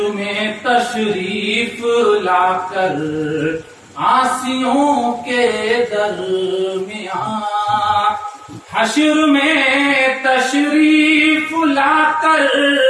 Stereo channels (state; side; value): identical; both; correlation 1.00